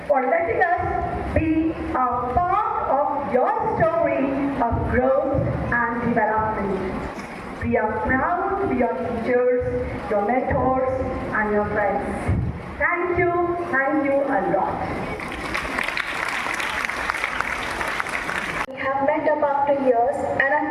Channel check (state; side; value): identical; both; correlation 1.00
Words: for letting us be a part of your story of growth and development. We are proud to be your teachers, your mentors, and your friends. Thank you a lot. We have met up after years and are